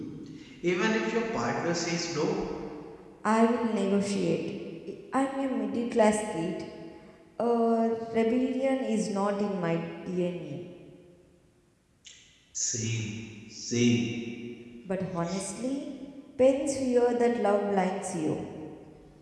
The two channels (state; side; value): identical; both; correlation 1.00